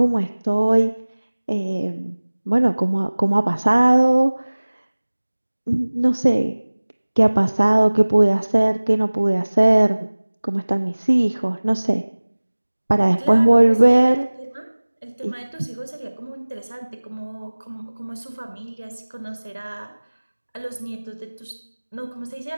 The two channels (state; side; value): inverted; both; correlation -1.00